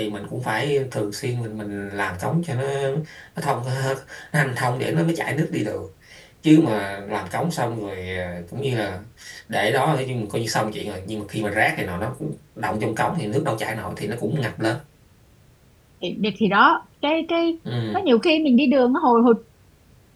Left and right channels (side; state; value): both; identical; correlation 1.00